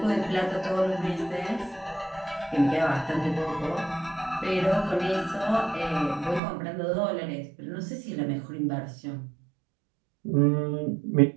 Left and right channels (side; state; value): left; drops out; at 6.4 s